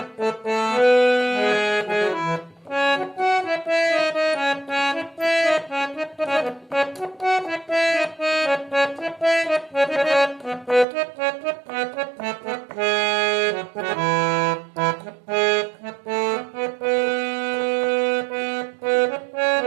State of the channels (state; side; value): drops out; left; at 10.9 s